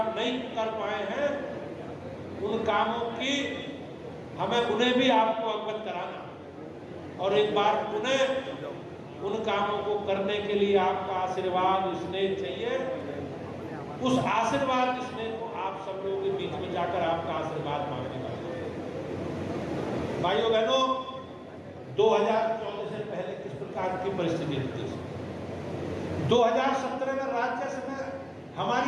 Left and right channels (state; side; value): identical; both; correlation 1.00